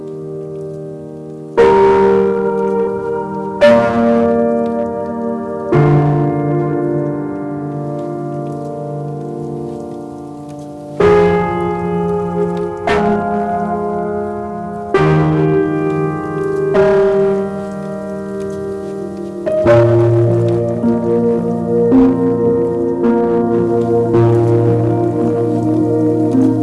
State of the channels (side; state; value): both; identical; correlation 1.00